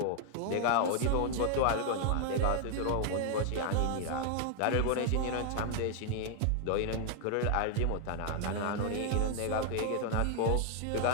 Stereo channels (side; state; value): both; different; correlation 0.00